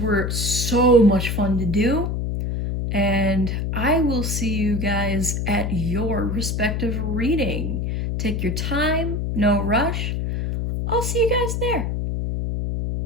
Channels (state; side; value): noise; left; hum, 1 dB below the sound